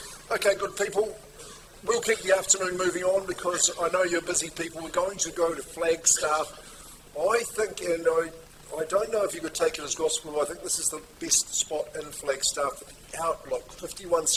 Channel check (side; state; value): both; identical; correlation 1.00